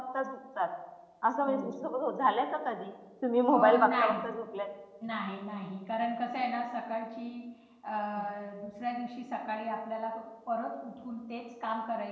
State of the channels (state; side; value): identical; both; correlation 1.00